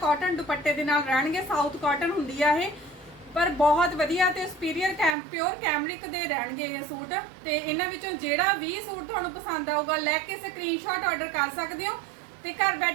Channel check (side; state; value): left; drops out; at 5.2 s